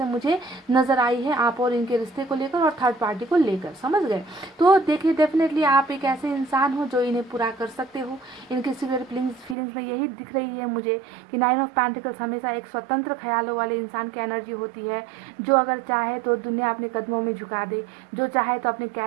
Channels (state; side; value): drops out; left; at 9.6 s